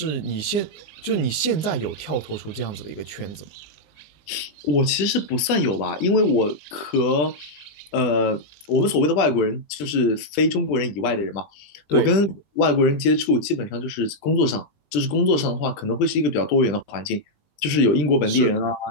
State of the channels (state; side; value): late; right; 20 ms